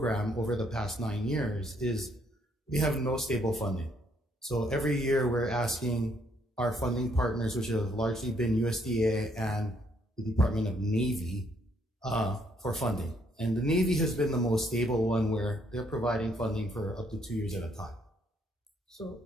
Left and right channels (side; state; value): both; normal; correlation 0.70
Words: over the past 9 years is we have no stable funding. So every year we're asking our funding partners, which have largely been USDA and the Department of Navy, for funding. And the Navy has been the most stable one, where they're providing funding for up to 2 years at a time. So